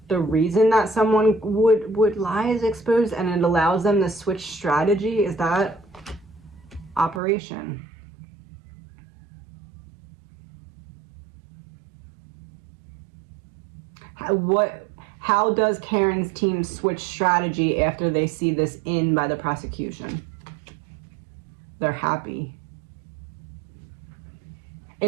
the reason that someone would lie is exposed, and it allows them to switch strategy. Is that operation? How does Karen's team switch strategy after they see this in by the prosecution? They're happy.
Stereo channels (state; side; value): drops out; left; at 7.2 s